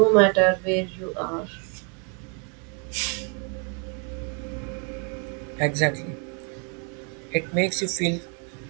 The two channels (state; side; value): quieter; left; 36.3 dB